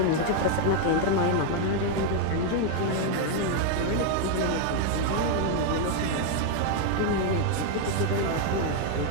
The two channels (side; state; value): both; different; correlation 0.01